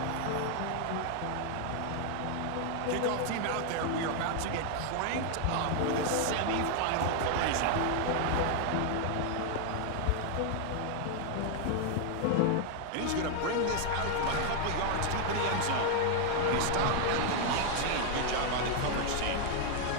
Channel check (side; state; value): both; different; correlation 0.00